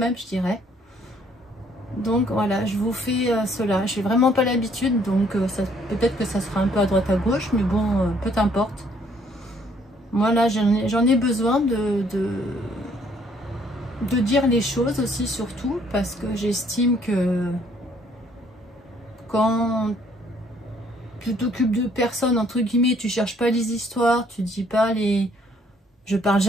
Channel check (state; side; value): normal; both; correlation 0.64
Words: je dirais. Donc voilà, je vous fais cela. Je n'ai vraiment pas l'habitude, donc peut-être que ça sera un peu à droite à gauche, mais bon, peu importe. Moi là, j'en ai besoin de dire les choses aussi, surtout, parce que j'estime que quand tu t'occupes de personnes, entre guillemets, tu cherches pas les histoires, tu dis pas les... Je parle